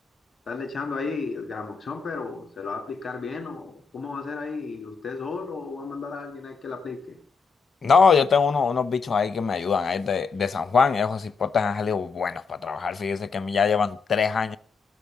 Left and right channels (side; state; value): right; quieter; 5.2 dB